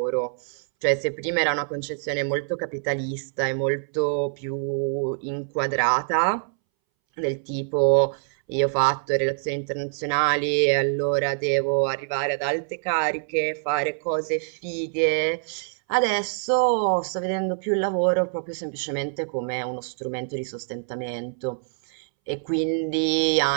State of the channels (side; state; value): left; silent; 62 dB below the other